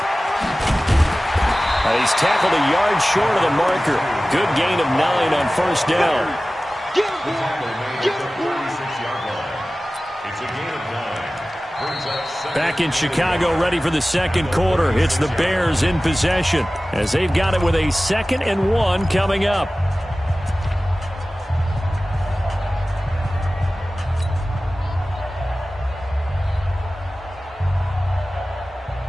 He's tackled a yard short of the marker. Good gain of 9 on 1st down. Back in Chicago, ready for the 2nd quarter. It's the Bears in possession as they've got it with a 2nd and 1 coming up.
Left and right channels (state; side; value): normal; both; correlation 0.97